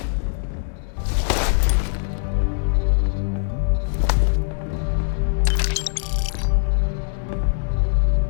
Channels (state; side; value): silent; right; digital silence